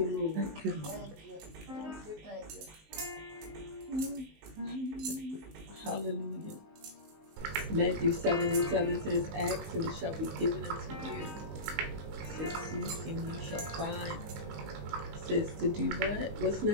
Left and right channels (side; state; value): left; late; 19 ms